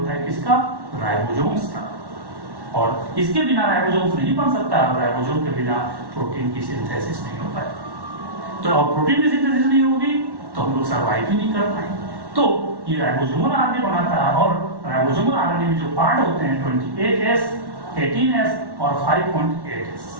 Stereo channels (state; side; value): late; left; 1.1 ms